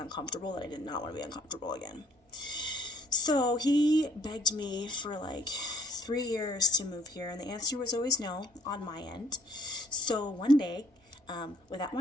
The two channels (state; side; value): normal; both; correlation 0.63